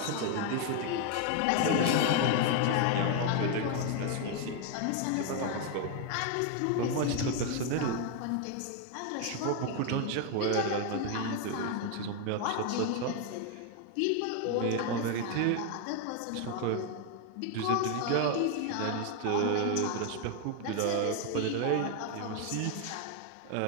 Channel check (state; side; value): different; both; correlation 0.01